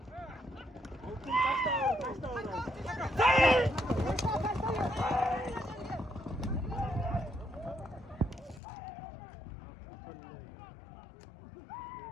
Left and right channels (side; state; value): right; drops out; at 8.6 s